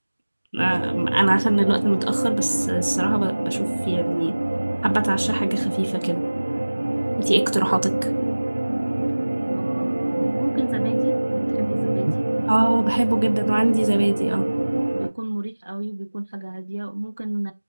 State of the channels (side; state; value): both; inverted; correlation -1.00